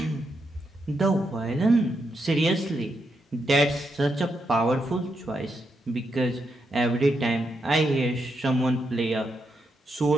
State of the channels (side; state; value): both; normal; correlation 0.82